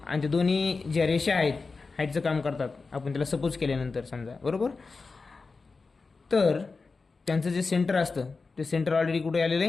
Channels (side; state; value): right; quieter; 4.2 dB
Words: आणि ते दोन्ही ज्या रेषा आहेत हाईटचं काम करतात, आपण त्याला सपोज केल्यानंतर समजा, बरोबर. तर त्यांचं जे सेंटर असतं ते सेंटर ऑलरेडी कुठे आलेलं